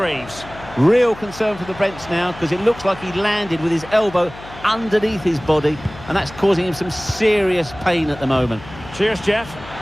Real concern for the Brents now, because it looks like he landed with his elbow underneath his body, and that's causing him some serious pain at the moment. Cheers, Jeff.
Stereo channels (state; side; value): noise; left; hum, 17 dB below the sound